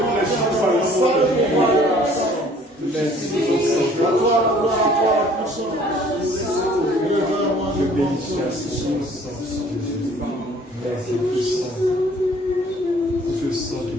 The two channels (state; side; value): normal; both; correlation 0.55